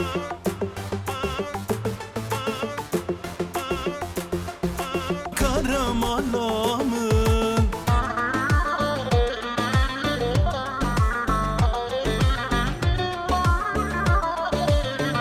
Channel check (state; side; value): identical; both; correlation 1.00